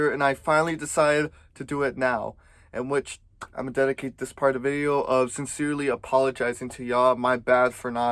and I finally decided to do it now. In which I'm gonna dedicate this part of the video of sincerely apologizing to y'all. My bad for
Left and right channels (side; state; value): both; identical; correlation 1.00